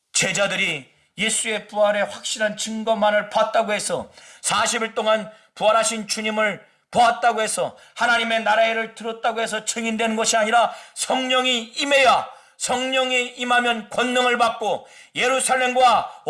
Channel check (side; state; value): both; identical; correlation 1.00